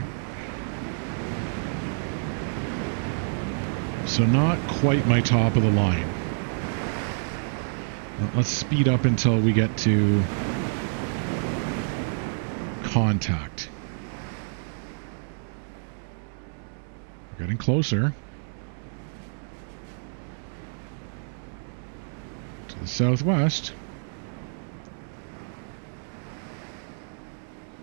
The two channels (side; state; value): left; silent; digital silence